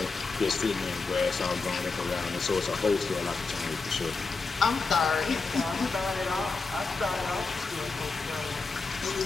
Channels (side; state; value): right; quieter; 4.2 dB